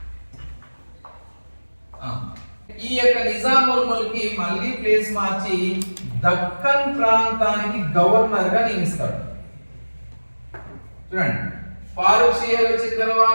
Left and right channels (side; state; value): both; inverted; correlation -1.00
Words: ఈ యొక్క నిజాముల్ ముల్క్ కి మళ్ళీ ప్లేస్ మార్చి దక్కన్ ప్రాంతానికి గవర్నర్ గా నియమిస్తాడు. చూడండి, ఫారూక్ షియర్ వచ్చిన